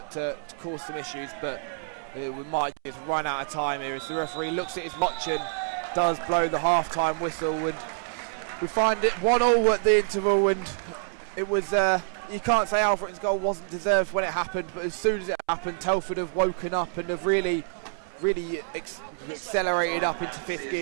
to cause some issues, but we might just run out of time here as the referee looks at his watch and does blow the half-time whistle, and we find it 1-1 at the interval. And it was you can't say Alfreton's goal wasn't deserved when it happened, but as soon as it happened, Telford have woken up and have really accelerated up into fifth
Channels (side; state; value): left; silent; 60 dB below the other